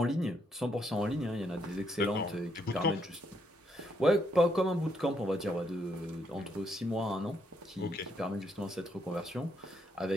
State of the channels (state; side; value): normal; both; correlation 0.75